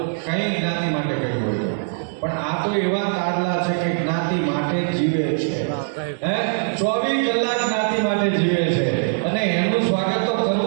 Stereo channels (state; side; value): silent; left; 64 dB below the other